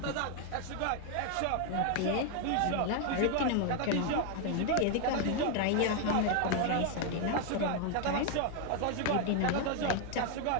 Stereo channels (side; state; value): both; different; correlation 0.01